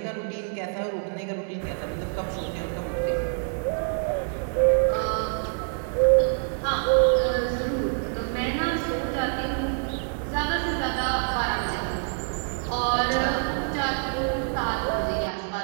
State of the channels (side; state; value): left; silent; 60 dB below the other